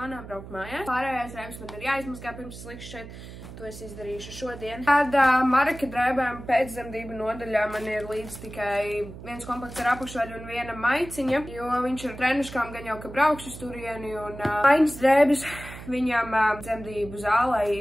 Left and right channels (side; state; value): right; noise; hum, 14 dB below the sound